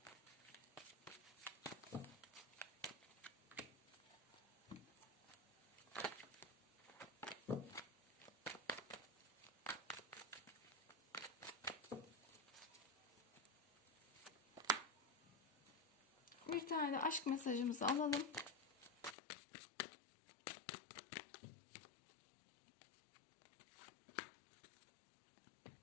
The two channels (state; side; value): drops out; right; at 19.2 s